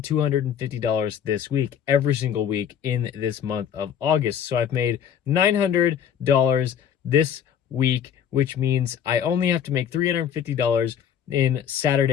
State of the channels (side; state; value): right; quieter; 8.7 dB